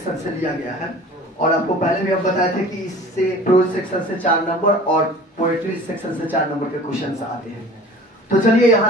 से लिया गया है। और आपको पहले भी हम बताए थे कि इससे प्रोज सेक्शन से 4 नंबर और पोएट्री सेक्शन से 4 नंबर के क्वेश्चन आते हैं। तो चलिए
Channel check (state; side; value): normal; both; correlation 0.43